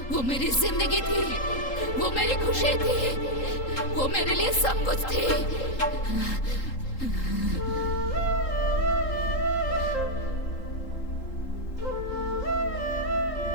वो मेरी जिंदगी थी, वो मेरी खुशी थी, वो मेरे लिए सब कुछ थी।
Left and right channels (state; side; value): late; right; 3.8 ms